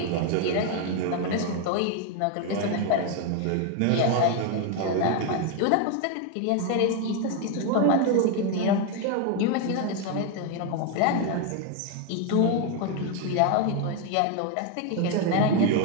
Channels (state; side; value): different; both; correlation 0.01